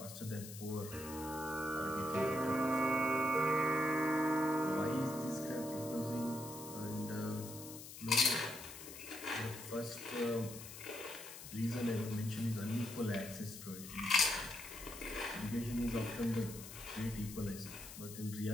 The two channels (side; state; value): left; noise; hiss, 12 dB below the sound